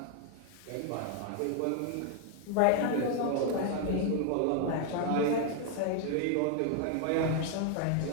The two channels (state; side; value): different; both; correlation 0.00